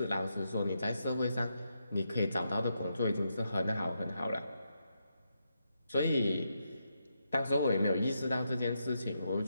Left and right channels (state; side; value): inverted; both; correlation -0.82